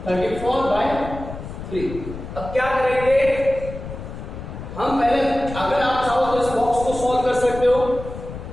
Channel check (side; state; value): left; noise; rumble, 10 dB below the sound